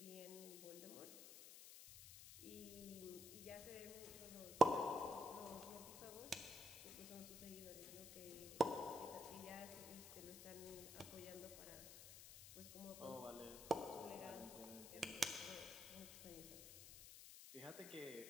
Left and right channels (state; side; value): noise; left; hiss, 11 dB below the sound